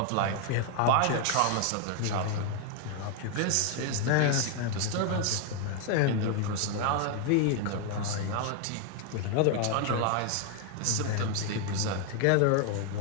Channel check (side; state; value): both; different; correlation 0.01